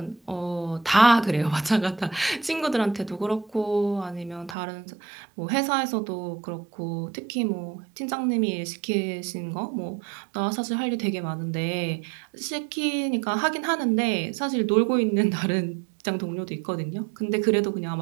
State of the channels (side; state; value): left; drops out; at 4.5 s